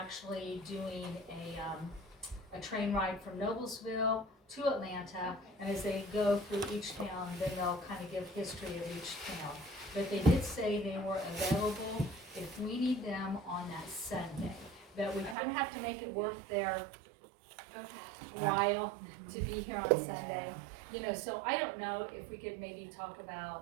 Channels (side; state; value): left; drops out; at 15.4 s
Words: actually doing a train ride from Noblesville to Atlanta, and as they go through each town, then they'll kind of give history of each town. But they did say they were available if we need them on that Sunday. But we kind of have to make it worth their while to be here on Sunday. So I don't know if we could maybe talk